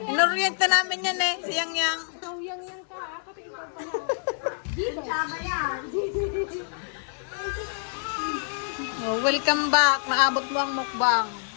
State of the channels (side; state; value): right; silent; digital silence